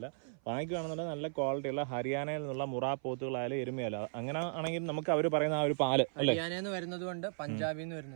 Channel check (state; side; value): silent; left; 54 dB below the other